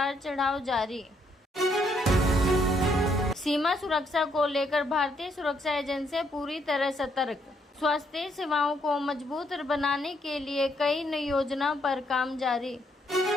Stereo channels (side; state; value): both; normal; correlation 0.72